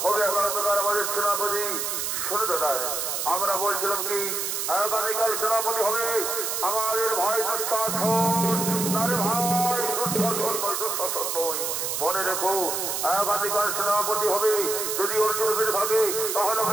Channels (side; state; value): right; noise; hiss, 1 dB below the sound